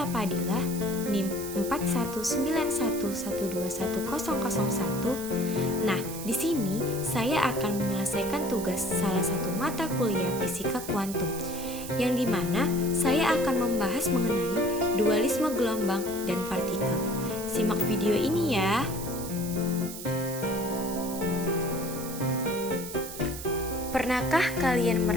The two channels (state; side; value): noise; right; hiss, 10 dB below the sound